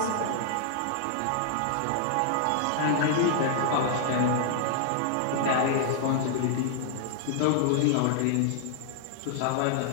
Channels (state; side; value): different; both; correlation -0.01